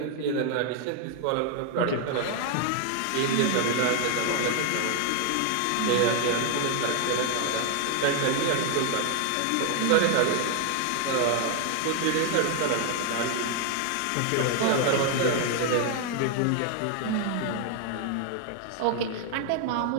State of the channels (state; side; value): different; both; correlation 0.00